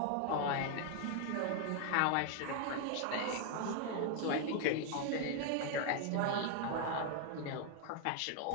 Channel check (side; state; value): both; different; correlation 0.00